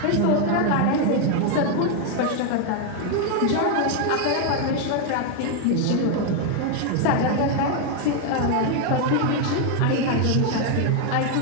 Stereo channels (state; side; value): different; both; correlation 0.01